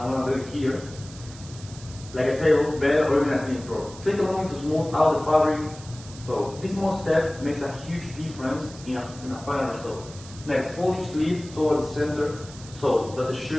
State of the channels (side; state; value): right; noise; hiss, 18 dB below the sound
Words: going to do it here, like a table, bed, or even a clean floor. Take a moment to smooth out the fabric. So this small step makes a huge difference in a final result. Next, fold each sleeve towards the center so that the